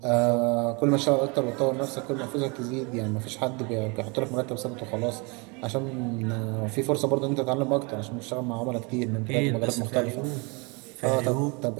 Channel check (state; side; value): quieter; left; 30.3 dB